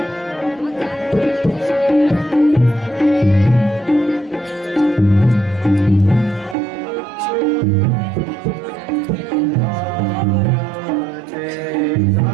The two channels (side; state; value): left; drops out; at 6.6 s